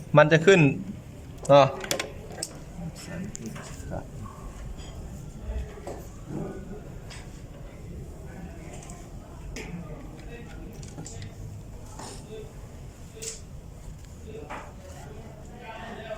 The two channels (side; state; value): both; identical; correlation 1.00